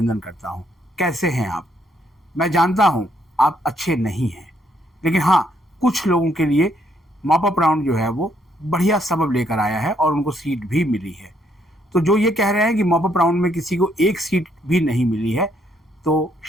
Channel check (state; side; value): normal; both; correlation 0.71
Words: करता हूं। कैसे हैं आप? मैं जानता हूं आप अच्छे नहीं हैं, लेकिन हाँ, कुछ लोगों के लिए मॉप अप राउंड जो है वो बढ़िया सबब लेकर आया है और उनको सीट भी मिली है। तो जो ये कह रहे हैं कि मॉप अप राउंड में किसी को एक सीट भी नहीं मिली है, तो